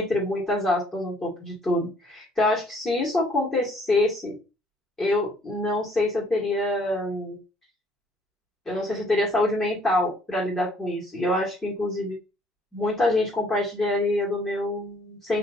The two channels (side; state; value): both; normal; correlation 0.61